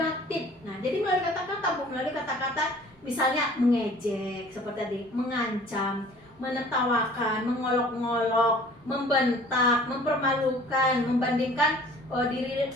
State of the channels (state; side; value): normal; both; correlation 0.50